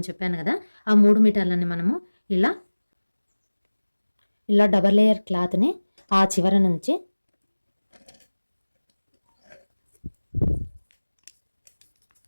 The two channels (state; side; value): inverted; both; correlation -1.00